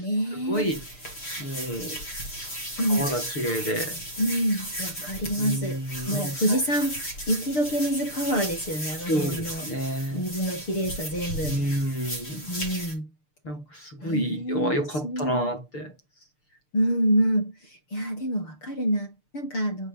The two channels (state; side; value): late; right; 6.7 ms